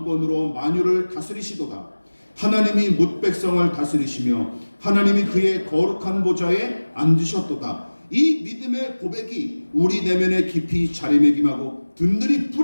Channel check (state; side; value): inverted; both; correlation -1.00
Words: 만유를 다스리시도다. 하나님이 뭇 백성을 다스리시며 하나님이 그의 거룩한 보좌에 앉으셨도다. 이 믿음의 고백이 우리 내면에 깊이 자리매김하고 든든히